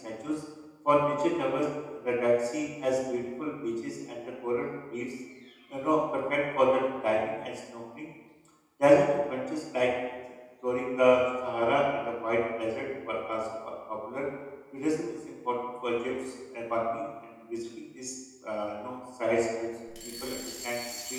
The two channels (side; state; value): both; identical; correlation 1.00